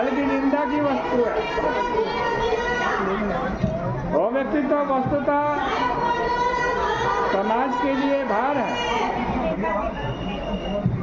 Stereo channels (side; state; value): both; identical; correlation 1.00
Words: निंदा की वस्तु है। वो व्यक्ति तो वस्तुतः समाज के लिए भार है।